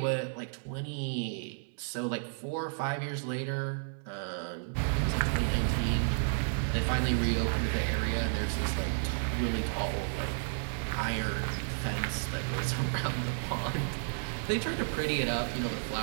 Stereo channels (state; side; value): silent; left; 56 dB below the other